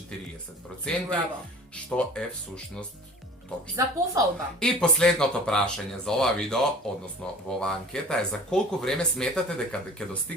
што е всушност точно. За пофалба. И последното прашање за ова видео, односно во оваа анкета е за колку време сметате дека ќе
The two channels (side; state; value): both; normal; correlation 0.43